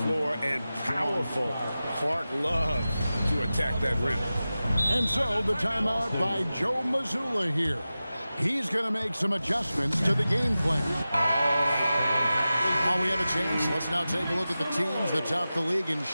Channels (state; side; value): inverted; both; correlation -0.95